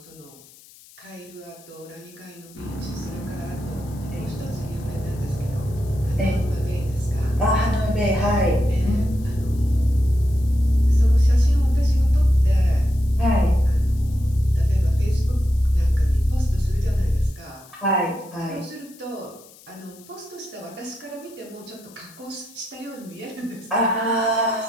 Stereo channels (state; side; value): noise; left; hiss, 24 dB below the sound